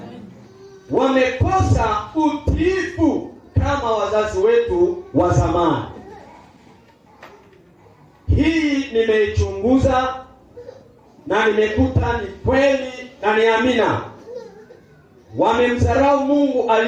Wamekosa utiifu kama wazazi wetu wa zamani. Hii nimeichunguza na nimekuta ni kweli na ni amina. Wamemdharau Mungu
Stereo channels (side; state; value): both; identical; correlation 1.00